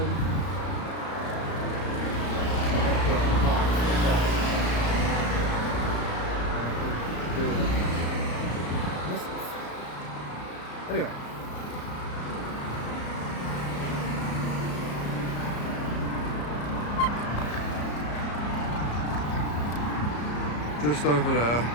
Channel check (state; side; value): late; right; 34 ms